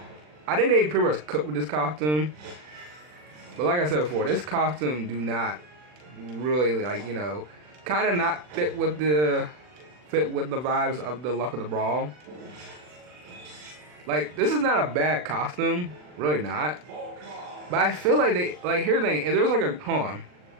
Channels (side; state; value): left; late; 40 ms